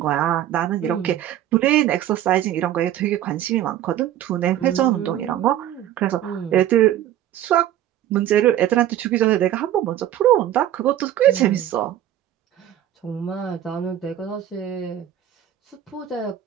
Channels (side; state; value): left; quieter; 11.8 dB